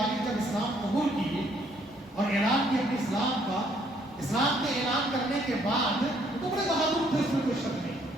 جب اسلام قبول کیے اور اعلان کیا اپنے اسلام کا، اسلام کے اعلان کرنے کے بعد تو بڑے بہادر تھے، اس میں کوئی شک نہیں،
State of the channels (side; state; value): both; normal; correlation 0.66